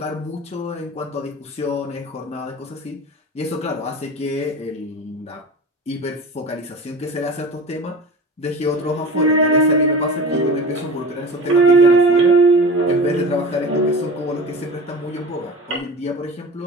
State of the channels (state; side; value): normal; both; correlation 0.34